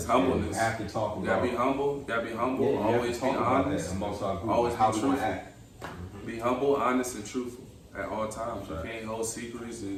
humbleness. You have to talk about. You gotta be humble. Yeah, Always be honest. Amongst our group. Always how be we want to truthful. act. Be humble, honest, and truthful at all times. Right. You can't hold secrets,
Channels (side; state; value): both; identical; correlation 1.00